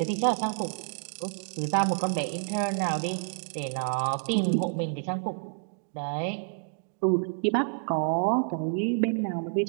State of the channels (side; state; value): left; silent; digital silence